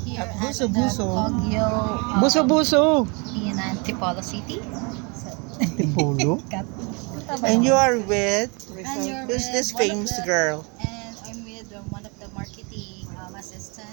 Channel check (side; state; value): left; quieter; 31.5 dB